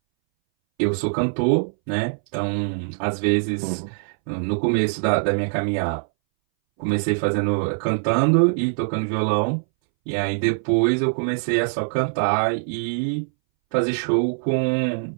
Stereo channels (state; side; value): silent; left; 62 dB below the other